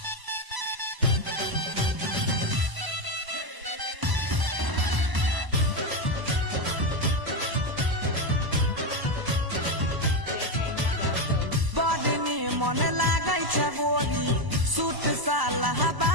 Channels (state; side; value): late; left; 1.0 ms